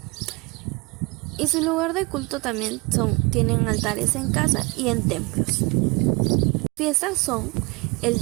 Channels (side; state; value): left; quieter; 26.3 dB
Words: Y su lugar de culto también tienen altares en casa y en templos. Fiestas son el